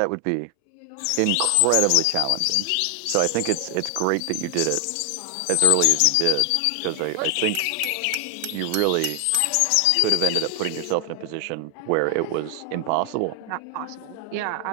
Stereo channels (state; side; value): different; both; correlation 0.00